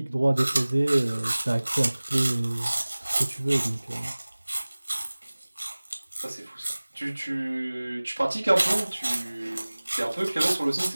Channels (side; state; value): both; inverted; correlation -1.00